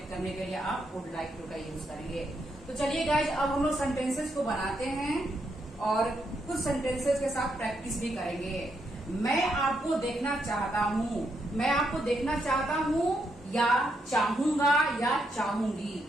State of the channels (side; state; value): both; normal; correlation 0.79